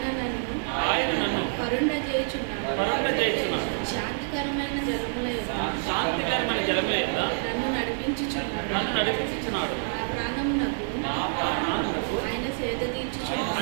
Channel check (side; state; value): left; silent; 58 dB below the other